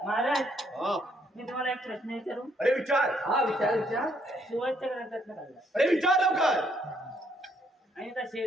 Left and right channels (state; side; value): normal; both; correlation 0.70